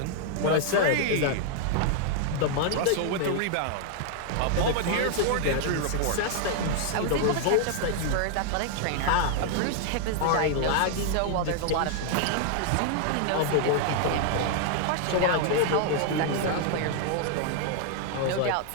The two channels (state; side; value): different; both; correlation 0.00